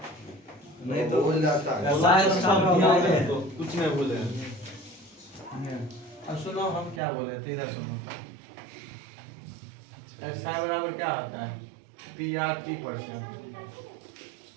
नहीं तो भूल जाता है। ऐसा है तो कुछ नहीं बोले। अब सुनो हम क्या बोल रहे थे, इधर सुनो। ऐसा बराबर क्या होता है PR/T%।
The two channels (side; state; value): left; drops out; at 7.0 s